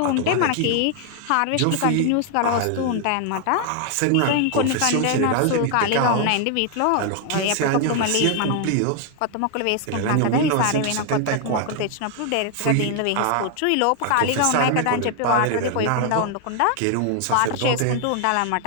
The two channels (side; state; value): both; different; correlation 0.00